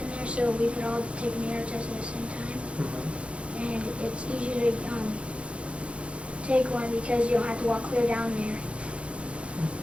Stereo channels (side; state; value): left; late; 0.060 ms